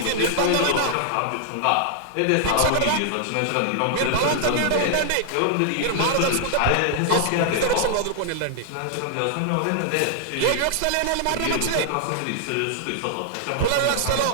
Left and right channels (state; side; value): different; both; correlation -0.01